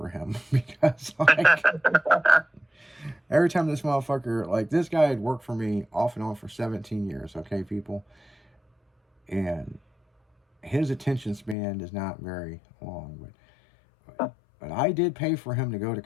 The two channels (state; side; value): drops out; right; at 11.6 s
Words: him because like every time this motherfucker, like this guy had worked for me off and on for 17 years, okay, people? And his attention span is not very long, but I did pay for him to go to